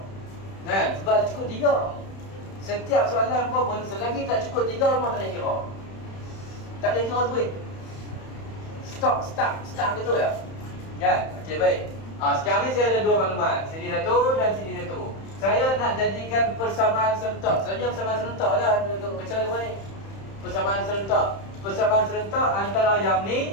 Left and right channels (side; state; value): right; late; 31 ms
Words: Kan? Sebab ada cukup 3. Setiap soalan apa pun selagi tak cukup 3 memang tak boleh kira. Tak boleh kira tu pun. Start betul ya? Kan? Okey, baik. Sekarang ni saya ada 2 maklumat. Sini satu dan sini satu. Saya nak jadikan persamaan serentak. Sebenarnya persamaan serentak dah untuk bicara apa ni? Persamaan serentak. Persamaan serentak antara yang ni